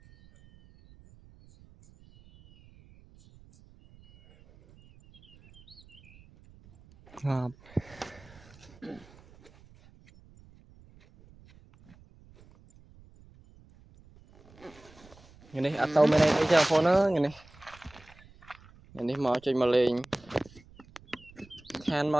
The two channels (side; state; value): right; noise; rumble, 25 dB below the sound